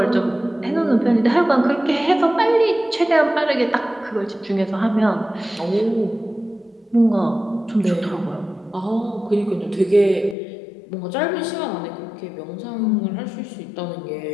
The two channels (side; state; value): right; drops out; at 10.4 s